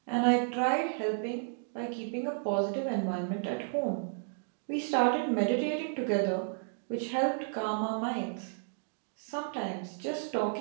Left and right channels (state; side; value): silent; left; digital silence